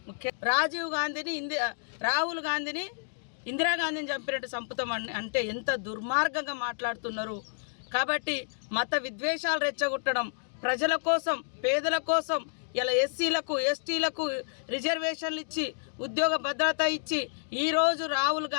రాహుల్ గాంధీని ఇందిరాగాంధీని చంపినట్టు సంపుతం అంటే ఎంత దుర్మార్గంగా మాట్లాడుతున్నారు. కాబట్టి మత విద్వేషాలు రెచ్చగొట్టడం, ప్రజల కోసం, పేదల కోసం ఇలా ఎస్సీలకు, ఎస్టీలకు రిజర్వేషన్లు ఇచ్చి, ఉద్యోగ భద్రత ఇచ్చి ఈరోజు రాహుల్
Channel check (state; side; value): silent; right; digital silence